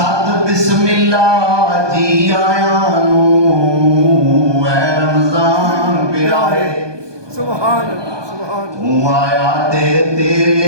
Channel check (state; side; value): late; left; 1.2 ms